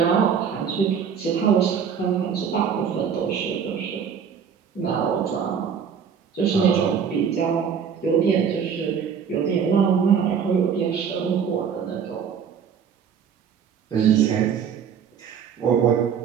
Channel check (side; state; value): left; quieter; 7.3 dB